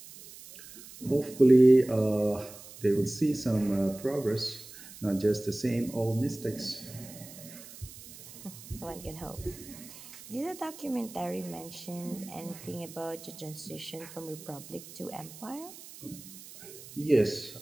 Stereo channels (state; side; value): noise; right; hiss, 17 dB below the sound